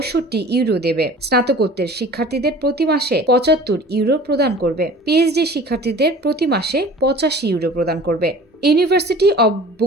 ইউরো দেবে। স্নাতকোত্তর শিক্ষার্থীদের প্রতি মাসে ৭৫ ইউরো প্রদান করবে। পিএইচডি শিক্ষার্থীদের প্রতি মাসে ৮৫ ইউরো প্রদান করবে। University of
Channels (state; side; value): normal; both; correlation 0.44